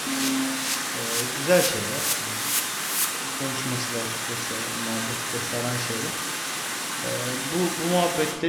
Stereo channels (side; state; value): both; identical; correlation 1.00